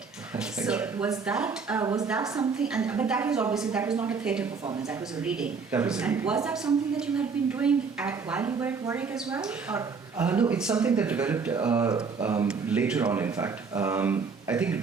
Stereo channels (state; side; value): quieter; left; 5.2 dB